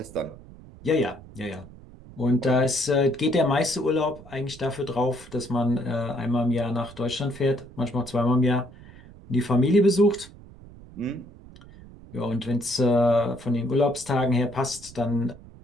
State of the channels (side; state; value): right; noise; rumble, 19 dB below the sound